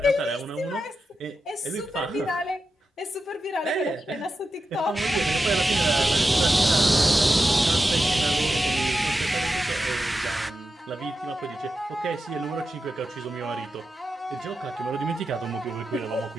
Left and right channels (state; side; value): normal; both; correlation 0.90